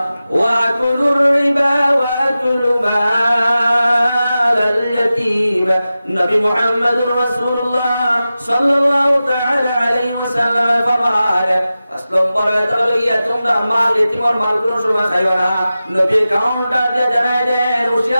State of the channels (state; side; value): inverted; both; correlation -0.94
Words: ওয়া কুলুর রিবা ওয়া কুলু মাল ইয়াতীম নবী মুহাম্মদুর রাসূলুল্লাহ সাল্লাল্লাহু তাআলা আলাইহি ওয়াসাল্লাম ফরমায় 5 নম্বর বলে তাহলে তোমরা মাল এতিমর মাল কোনো সময় খাইবা না। নবী কাউন্টার দিয়ে জানাই দেন